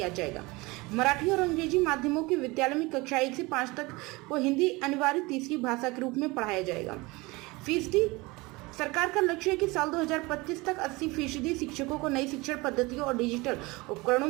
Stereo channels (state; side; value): quieter; left; 23.4 dB